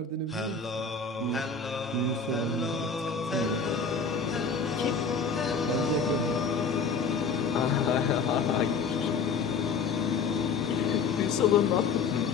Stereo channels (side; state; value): right; quieter; 4.9 dB